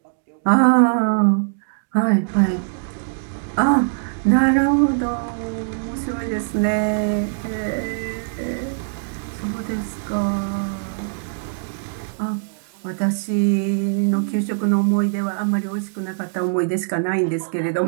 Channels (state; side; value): silent; left; digital silence